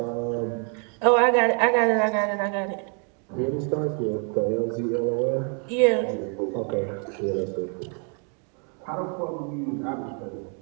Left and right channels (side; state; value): left; quieter; 39.8 dB